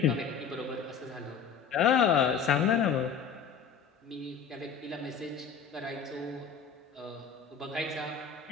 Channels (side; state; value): right; quieter; 6.6 dB